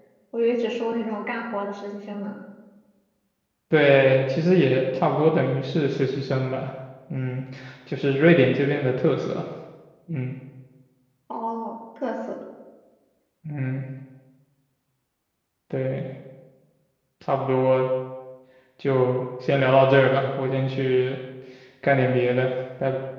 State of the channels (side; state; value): both; identical; correlation 1.00